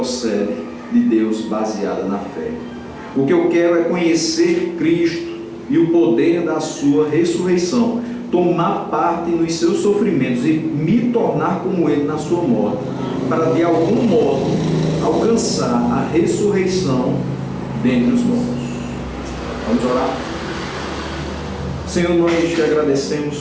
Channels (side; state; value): both; identical; correlation 1.00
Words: de Deus baseada na fé. O que eu quero é conhecer Cristo e o poder da sua ressurreição, tomar parte nos seus sofrimentos e me tornar como ele na sua morte, para de algum modo alcançar a ressurreição dentre os mortos. Vamos orar? Senhor, nós te